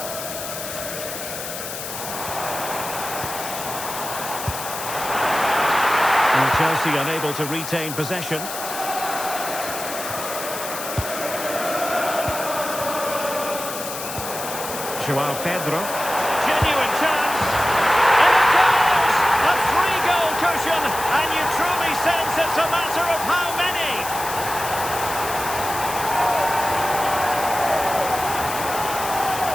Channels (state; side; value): noise; left; hiss, 8 dB below the sound